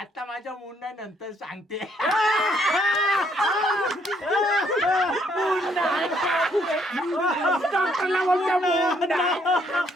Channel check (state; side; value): normal; both; correlation 0.69